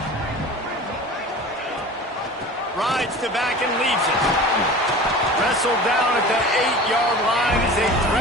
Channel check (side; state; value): both; normal; correlation 0.37